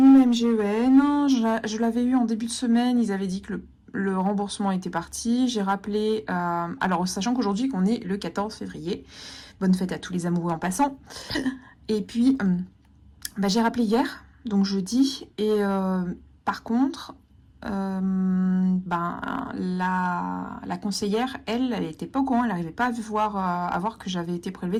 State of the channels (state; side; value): identical; both; correlation 1.00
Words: ma MGEN. Je l'avais eu en début de semaine. Ils avaient dit que le remboursement était parti. J'ai rappelé... alors, sachant qu'aujourd'hui, qu'on est le 14 février. Bonne fête à tous les amoureux en passant. Et puis, j'ai rappelé hier, donc jeudi. Et par contre... la conseillère, elle était pas au courant, elle n'arrivait pas à voir que j'avais été